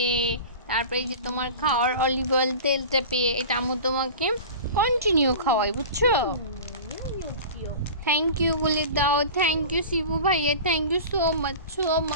তারপরে এই যে তোমার খাওয়ার অলিভ অয়েল তেলটা পেয়ে। এটা আমি তোমাকে কন্টিনিউ খাওয়াই বুঝছো। থ্যাংক ইউ বলে দাও। থ্যাংক ইউ শিবু ভাইয়া, thank you so much so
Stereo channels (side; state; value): both; inverted; correlation -0.35